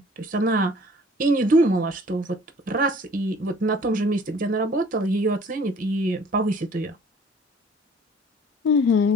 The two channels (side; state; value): both; normal; correlation 0.52